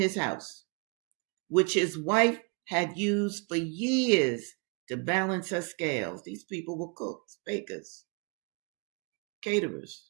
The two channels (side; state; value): left; quieter; 34.5 dB